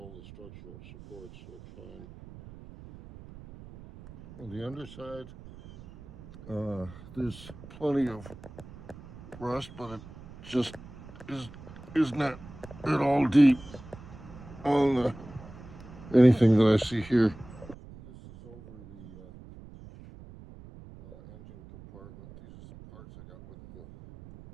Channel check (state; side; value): noise; right; rumble, 17 dB below the sound